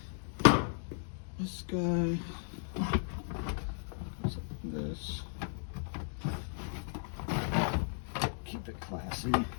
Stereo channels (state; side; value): silent; right; digital silence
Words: This guy goes like this. Keep it classy.